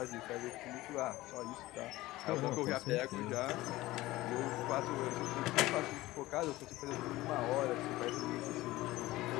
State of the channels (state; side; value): quieter; right; 18.0 dB